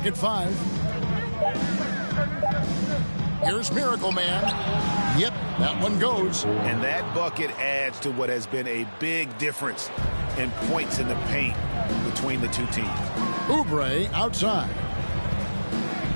at 5. Here's Miracle Man. Yep, that one goes. And that bucket adds to what has been a big difference in points in the paint between the two teams. Oubre outside.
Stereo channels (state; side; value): inverted; both; correlation -1.00